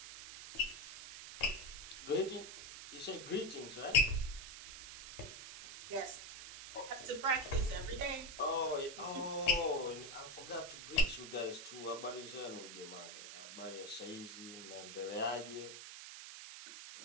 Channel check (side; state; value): right; noise; hiss, 11 dB below the sound